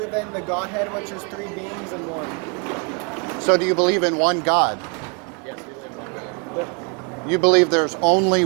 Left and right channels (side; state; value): left; quieter; 35.5 dB